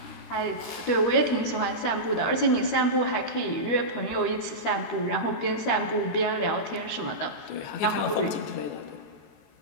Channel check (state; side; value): late; right; 13 ms